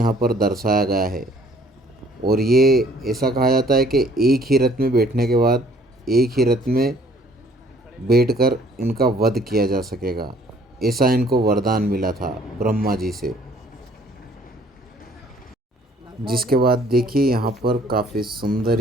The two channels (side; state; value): both; normal; correlation 0.59